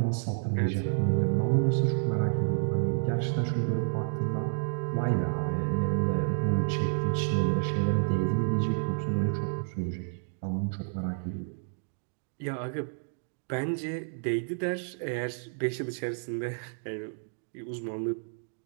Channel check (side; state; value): left; silent; digital silence